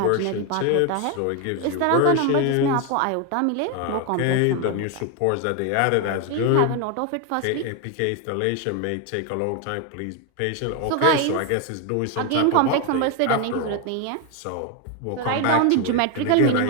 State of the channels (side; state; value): both; different; correlation 0.01